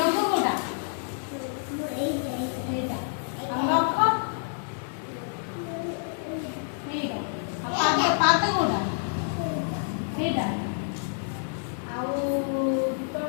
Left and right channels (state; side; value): silent; right; digital silence